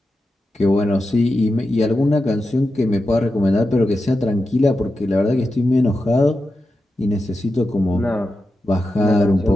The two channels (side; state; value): both; normal; correlation 0.90